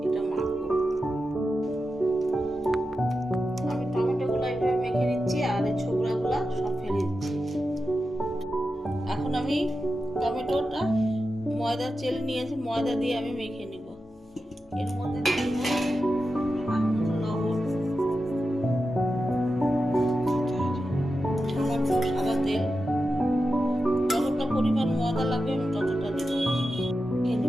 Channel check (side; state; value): both; normal; correlation 0.90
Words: এটা মাখবো। আমি টমেটোগুলো এইভাবে মেখে নিচ্ছি আর এই ছোবড়াগুলো সব ফেলে দিচ্ছি। এখন আমি টমেটোটা ময়দা চেলে নিয়েছি, ময়দা দিয়ে আমি মেখে নিব। এর মধ্যে লবণ, সামান্য সাদা তেল, যতটা পরিমাণ ময়দা লাগবে আমি ততটা দেব, মেখে